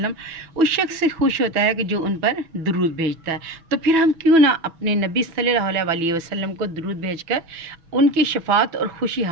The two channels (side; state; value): left; late; 6.1 ms